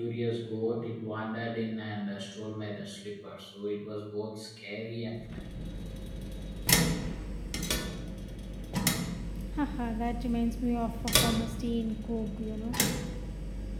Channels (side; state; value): both; identical; correlation 1.00